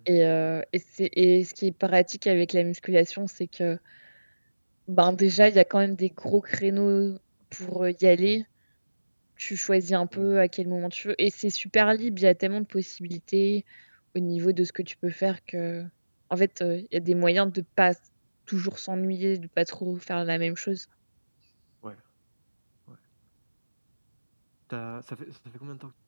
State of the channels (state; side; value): inverted; both; correlation -1.00